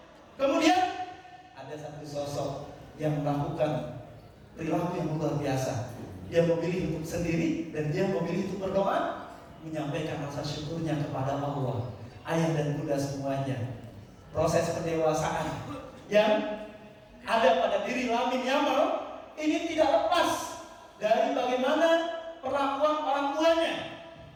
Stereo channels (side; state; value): both; identical; correlation 1.00